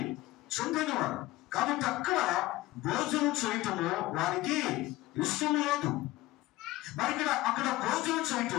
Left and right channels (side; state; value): right; quieter; 17.6 dB